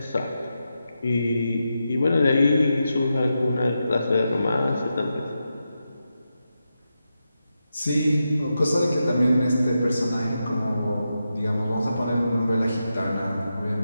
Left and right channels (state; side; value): inverted; both; correlation -0.88